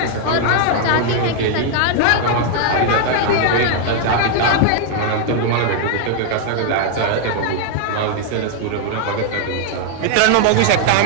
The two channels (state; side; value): different; both; correlation 0.00